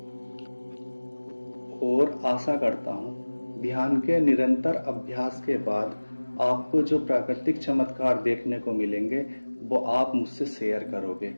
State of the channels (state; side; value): inverted; both; correlation -1.00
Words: और आशा करता हूं ध्यान के निरंतर अभ्यास के बाद आपको जो प्राकृतिक चमत्कार देखने को मिलेंगे, वो आप मुझसे शेयर करोगे।